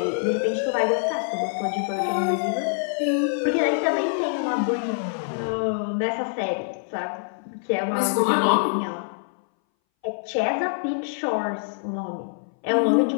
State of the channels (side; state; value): right; silent; 60 dB below the other